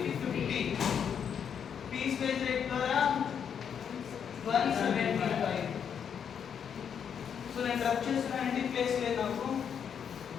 పీస్ వేజ్ రేట్ ద్వారా 175. సో నేను రబ్ చేస్తున్నానండి, ప్లేస్ లేదు నాకు.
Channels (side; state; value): right; quieter; 7.7 dB